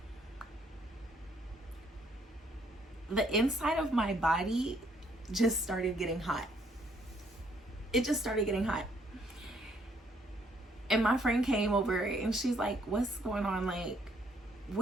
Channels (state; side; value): normal; both; correlation 0.68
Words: the inside of my body just started getting hot. It just started getting hot. And my friend came over and she's like, what's going on? Like,